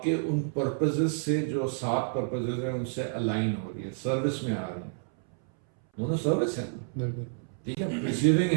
کے ان پرپزز سے، جو 7 پرپزز ہیں ان سے الائن ہو رہی ہے، سروس میں آ رہی ہیں. دونوں سروس ہیں. بالکل ٹھیک ہے. ریسیونگ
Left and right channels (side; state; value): left; silent; 58 dB below the other